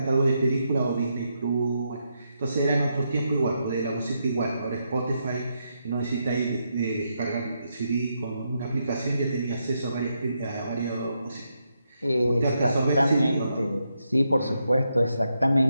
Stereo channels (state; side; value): inverted; both; correlation -0.82